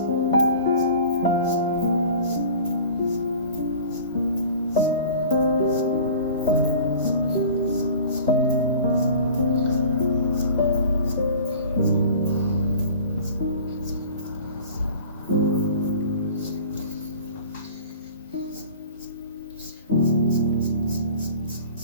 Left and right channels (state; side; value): inverted; both; correlation -0.42